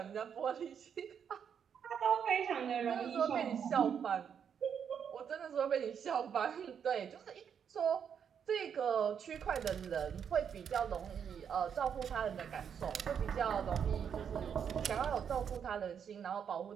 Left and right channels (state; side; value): quieter; left; 7.7 dB